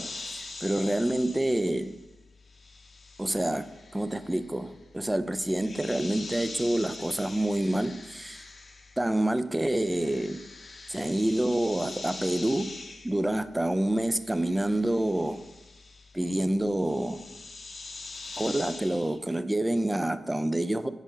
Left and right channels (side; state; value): both; normal; correlation 0.98